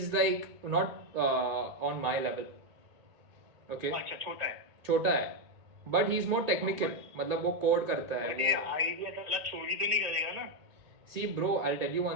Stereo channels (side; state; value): left; late; 2.2 ms